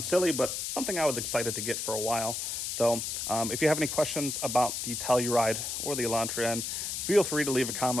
silly, but something I was excited to get for a while. So if you have any questions about the Telluride or the Elantra end, feel free to leave a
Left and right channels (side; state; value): left; noise; hiss, 3 dB below the sound